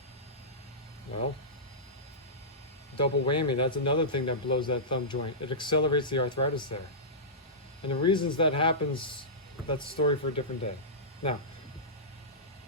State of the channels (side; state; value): both; normal; correlation -0.17